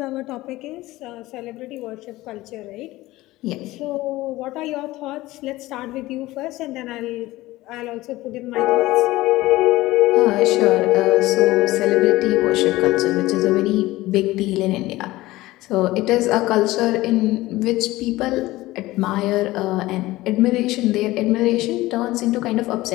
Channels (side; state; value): right; quieter; 18.2 dB